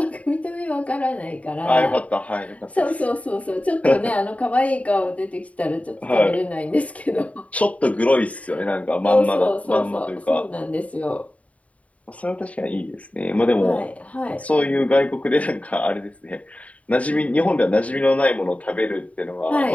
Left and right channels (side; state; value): right; late; 0.067 ms